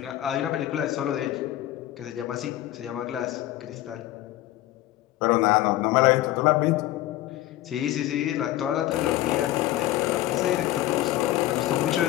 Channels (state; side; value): quieter; right; 14.7 dB